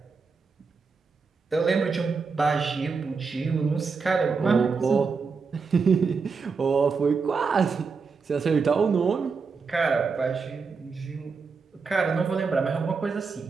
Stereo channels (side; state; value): left; quieter; 5.0 dB